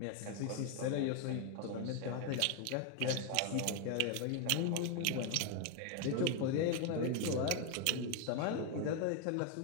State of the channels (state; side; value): different; both; correlation 0.01